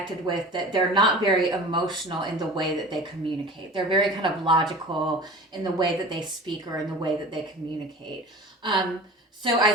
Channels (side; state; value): both; normal; correlation 0.38